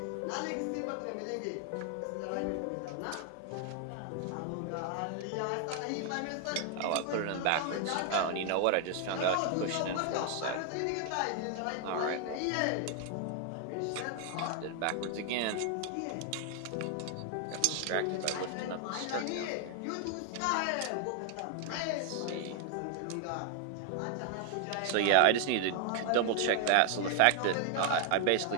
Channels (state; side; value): different; both; correlation 0.01